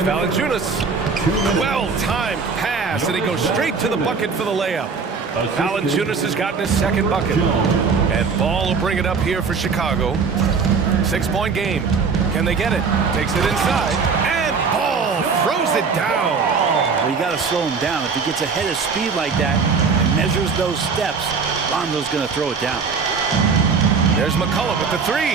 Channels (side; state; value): left; quieter; 5.2 dB